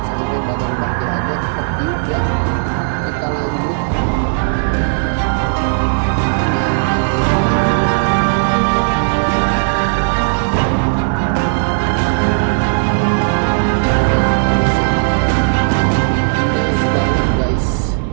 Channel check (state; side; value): silent; left; digital silence